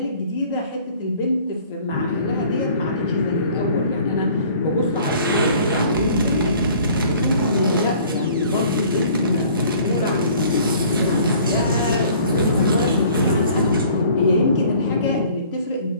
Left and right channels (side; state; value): both; inverted; correlation -0.53